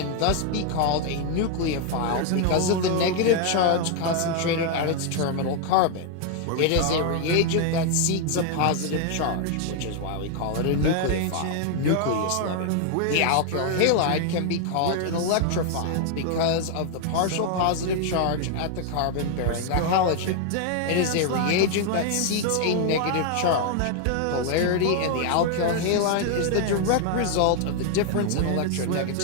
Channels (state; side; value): different; both; correlation 0.00